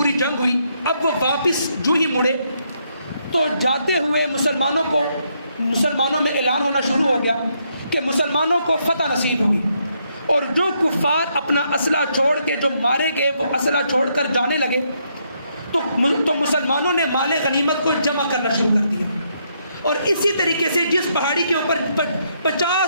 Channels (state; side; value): inverted; both; correlation -0.75